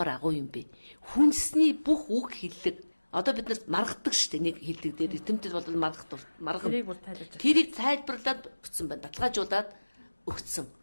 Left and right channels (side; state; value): both; inverted; correlation -1.00